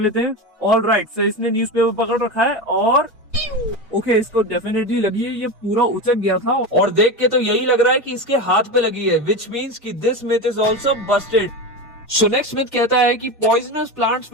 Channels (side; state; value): both; normal; correlation 0.21